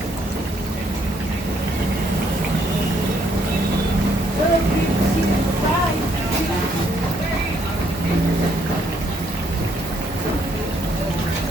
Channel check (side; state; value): both; normal; correlation 0.70